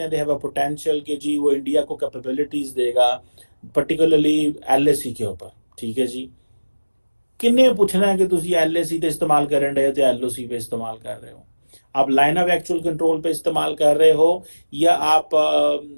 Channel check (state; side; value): inverted; both; correlation -1.00